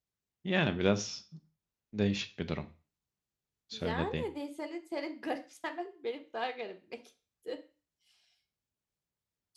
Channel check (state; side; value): identical; both; correlation 1.00